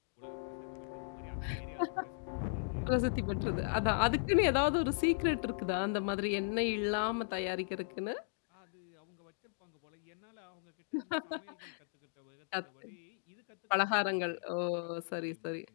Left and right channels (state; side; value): silent; right; digital silence